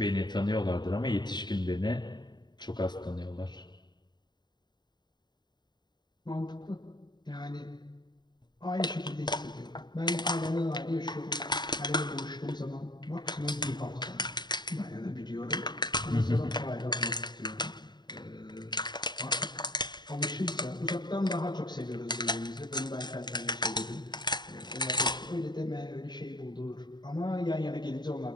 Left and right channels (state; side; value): late; right; 0.21 ms